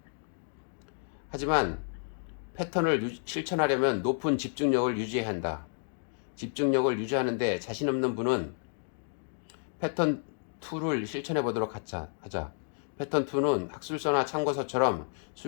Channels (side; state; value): right; silent; digital silence